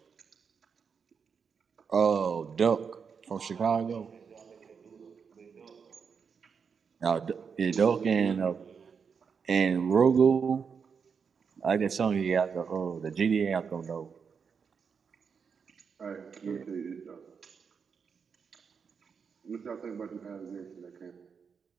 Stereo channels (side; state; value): left; quieter; 6.2 dB